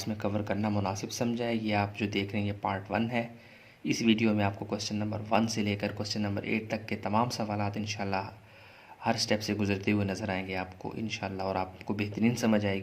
में कवर करना मुनासिब समझा है। ये आप जो देख रहे हैं ये पार्ट 1 है। इस वीडियो में आपको क्वेश्चन नंबर 1 से लेकर क्वेश्चन नंबर 8 तक के तमाम सवालात इंशाल्लाह हर स्टेप से गुजरते हुए नज़र आएंगे आपको इंशाल्लाह, और आपको बेहतरीन समझ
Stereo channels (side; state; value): both; identical; correlation 1.00